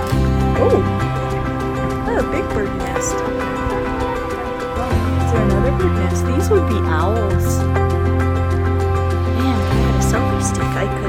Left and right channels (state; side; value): identical; both; correlation 1.00